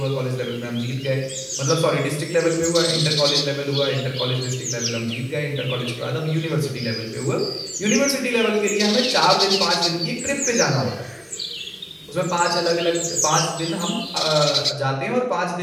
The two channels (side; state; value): both; identical; correlation 1.00